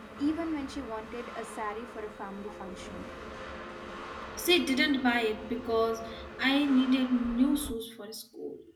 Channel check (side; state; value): both; identical; correlation 1.00